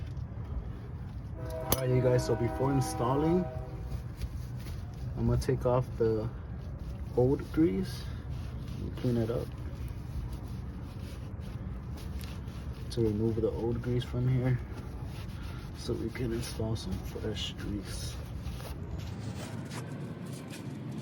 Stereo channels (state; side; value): identical; both; correlation 1.00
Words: Alright, you guys, so before installing, I'm gonna take off the old grease and clean it up to remove the old grease from here, so we can install some fresh grease.